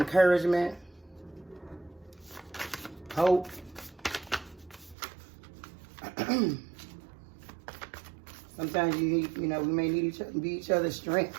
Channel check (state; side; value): drops out; left; at 5.0 s